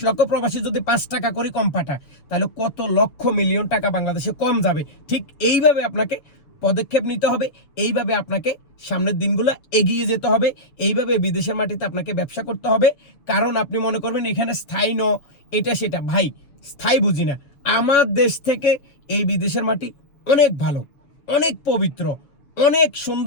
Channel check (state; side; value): late; right; 7.1 ms